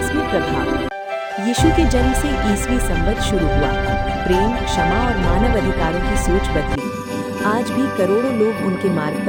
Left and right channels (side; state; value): both; identical; correlation 1.00